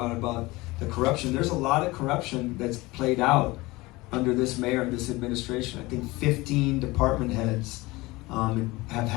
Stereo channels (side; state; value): right; quieter; 21.4 dB